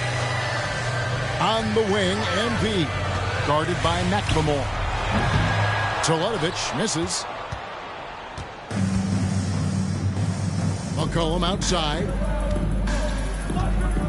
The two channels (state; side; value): identical; both; correlation 1.00